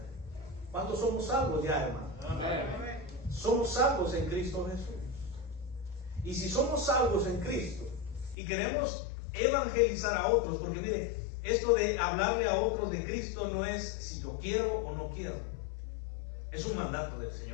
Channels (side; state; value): right; drops out; at 8.3 s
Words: ¿Cuántos somos salvos ya, hermano? Amén. Somos salvos en Cristo Jesús. Y si somos salvos en Cristo y queremos evangelizar a otros, porque mire, esto de hablarle a otros de Cristo no es si yo quiero o no quiero. Es un mandato del